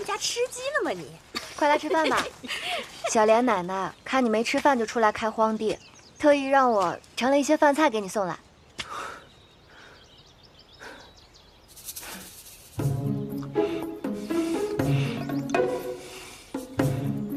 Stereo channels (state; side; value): identical; both; correlation 1.00